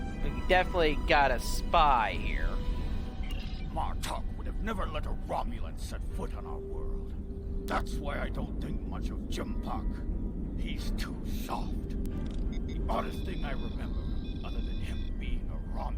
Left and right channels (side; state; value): both; identical; correlation 1.00